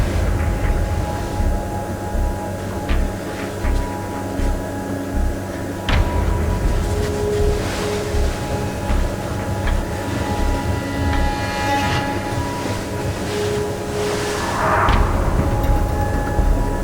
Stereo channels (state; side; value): identical; both; correlation 1.00